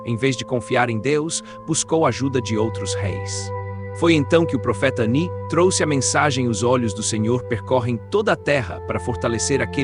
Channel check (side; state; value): both; identical; correlation 1.00